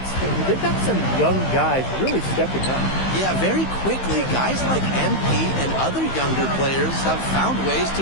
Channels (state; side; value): late; right; 15 ms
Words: but they've got some young guys really stepping up. Yeah, very quickly, guys like MP and other younger players have found ways